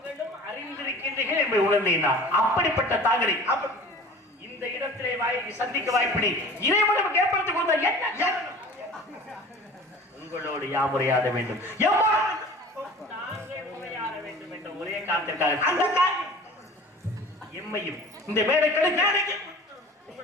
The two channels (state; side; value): normal; both; correlation 0.42